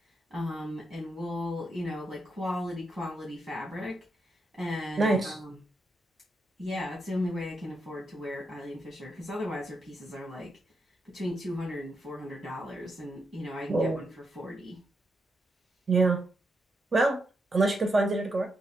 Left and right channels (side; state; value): both; normal; correlation 0.82